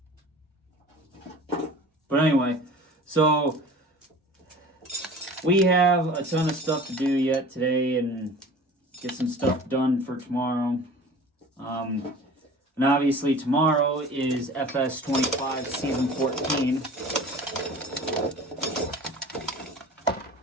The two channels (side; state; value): both; normal; correlation 0.41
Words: But anyway, so we have a ton of stuff to do yet today and get some stuff done for tomorrow. And obviously tomorrow is FS 25 Season 14.